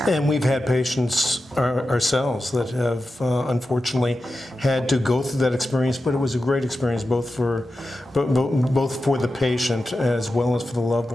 And we've had patients ourselves that have unfortunately had to go through that experience, but it was a great experience both for the patient as well as for the loved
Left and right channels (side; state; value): both; normal; correlation 0.92